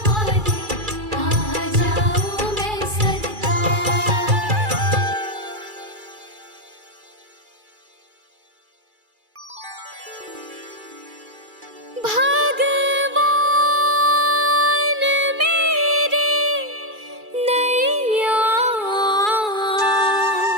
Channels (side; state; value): left; late; 2.3 ms